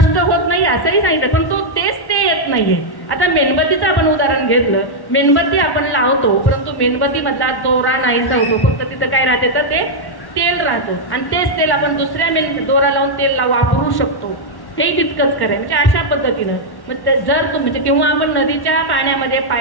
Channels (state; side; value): late; right; 1.1 ms